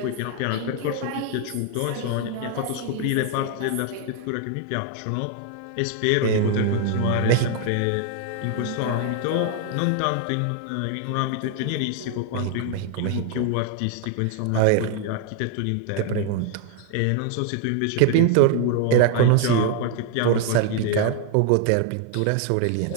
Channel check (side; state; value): both; different; correlation 0.00